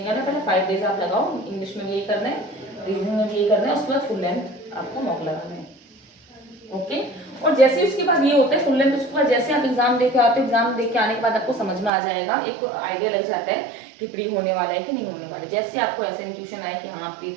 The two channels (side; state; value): left; drops out; at 11.9 s